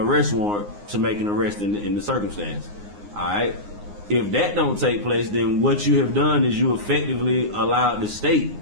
warrant to make an arrest in the circumstance. All right. If that don't take place, then what you have done is you effectively allowed the state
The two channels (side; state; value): left; late; 9.7 ms